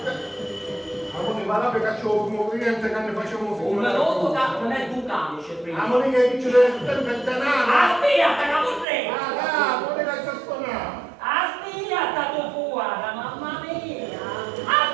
Amore, va là per cacciare un cliente che ne facciamo Un melotto che non è un camice prima. Amore, che dice del denaro. Aspetta, capurre! Ah, amore, che sta suonando. Aspetta, tu fuori, mamma mia!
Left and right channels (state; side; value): drops out; left; at 8.8 s